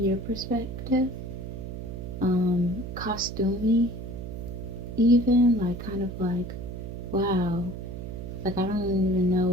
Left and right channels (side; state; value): right; noise; hum, 8 dB below the sound